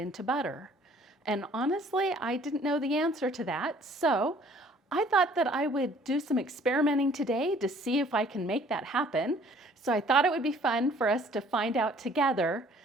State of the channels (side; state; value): both; normal; correlation 0.56